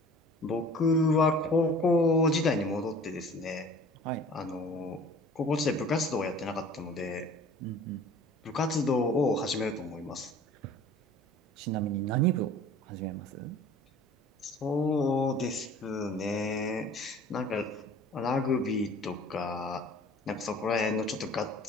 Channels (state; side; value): normal; both; correlation 0.47